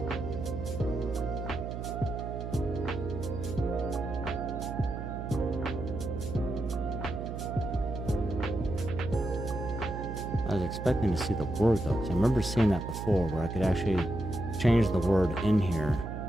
I was expecting to see the word though, because I remember seeing that before where I could actually change the word in here.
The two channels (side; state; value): right; noise; hum, 6 dB below the sound